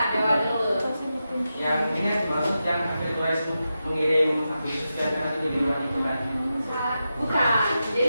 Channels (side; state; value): both; inverted; correlation -0.90